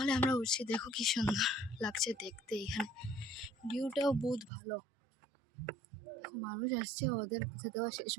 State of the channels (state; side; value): drops out; left; at 4.5 s